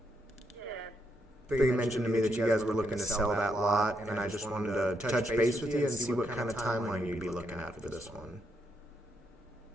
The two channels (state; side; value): normal; both; correlation 0.79